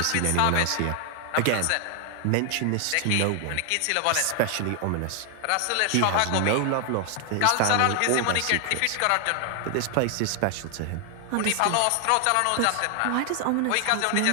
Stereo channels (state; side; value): different; both; correlation 0.00